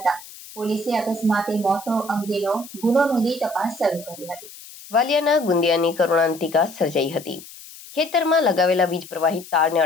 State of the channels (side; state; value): left; noise; hiss, 17 dB below the sound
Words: પોલીસે અકસ્માતે મોત અંગેનો ગુનો નોંધી તપાસ શરૂ કરી હતી. વાલિયાના ગુંદિયાની કરુણાંતિકા સર્જાઈ હતી. ખેતરમાં લગાવેલા વીજ પ્રવાહિત તારને